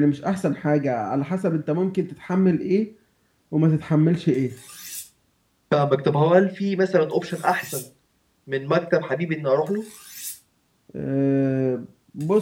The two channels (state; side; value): identical; both; correlation 1.00